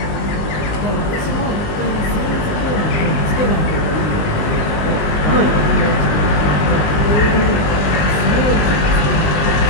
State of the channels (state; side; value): late; right; 19 ms